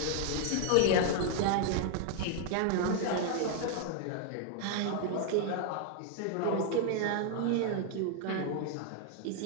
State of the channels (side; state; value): both; different; correlation 0.00